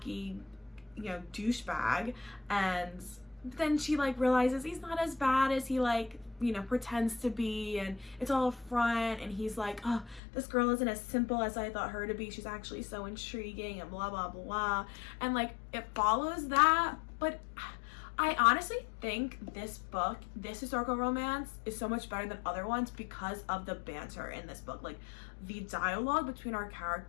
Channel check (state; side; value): drops out; right; at 10.2 s